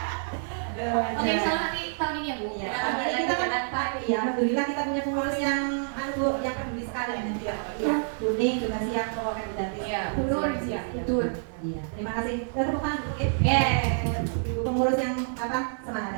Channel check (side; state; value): left; silent; 60 dB below the other